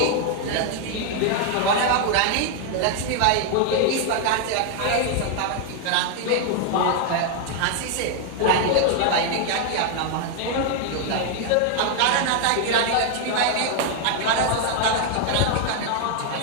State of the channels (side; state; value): both; different; correlation 0.00